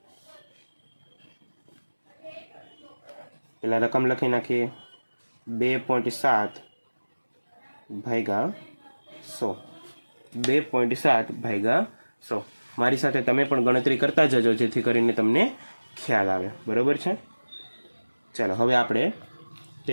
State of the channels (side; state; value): both; inverted; correlation -1.00